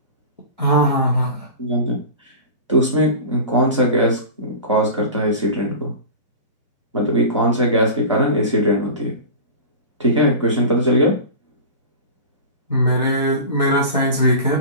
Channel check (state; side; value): inverted; both; correlation -0.32